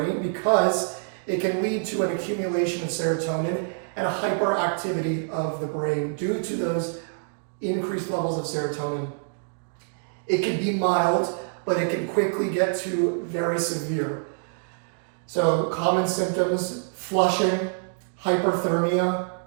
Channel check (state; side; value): silent; left; digital silence